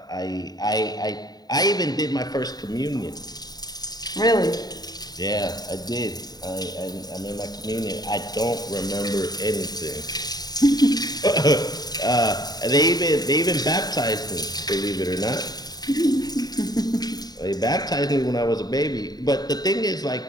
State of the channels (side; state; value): right; late; 0.19 ms